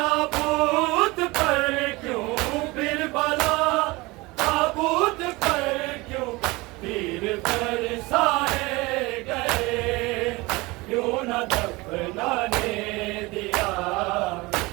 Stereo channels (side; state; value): left; quieter; 22.9 dB